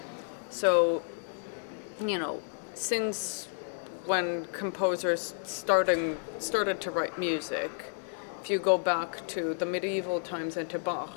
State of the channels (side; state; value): right; silent; 57 dB below the other